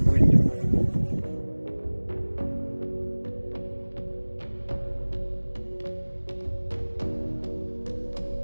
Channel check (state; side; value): inverted; both; correlation -1.00